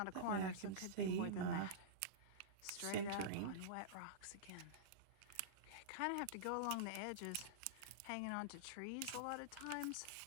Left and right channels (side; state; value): both; different; correlation -0.04